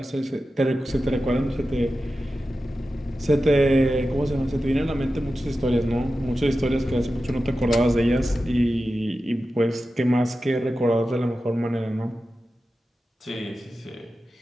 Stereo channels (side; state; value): both; normal; correlation 0.93